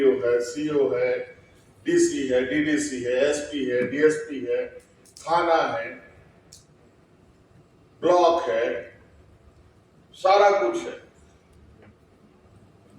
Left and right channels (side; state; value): both; identical; correlation 1.00